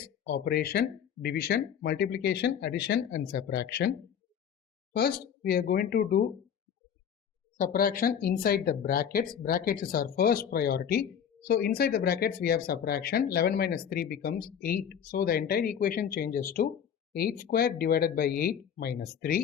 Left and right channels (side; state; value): right; quieter; 8.3 dB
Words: operation, division, multiplication, addition and subtraction. First, we are going to do subtraction inside the brackets. Brackets is our first priority. So inside the brackets we have subtraction. 11 minus 3 becomes 8. So the entire equation changes to 8 square divided by 8 minus